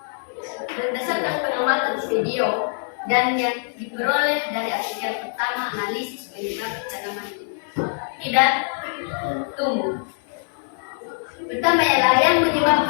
Berdasarkan pengamatan video dan yang diperoleh dari artikel pertama analisis penyebab tanaman tidak tumbuh. Pertama ialah yang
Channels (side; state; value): right; silent; 62 dB below the other